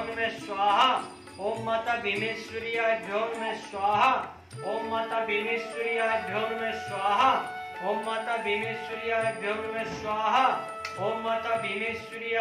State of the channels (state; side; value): identical; both; correlation 1.00